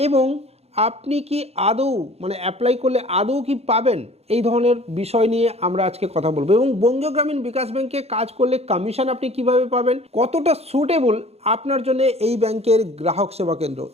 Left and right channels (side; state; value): left; late; 0.30 ms